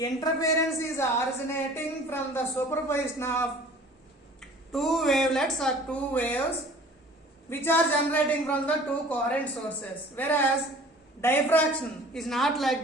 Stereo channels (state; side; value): normal; both; correlation 0.47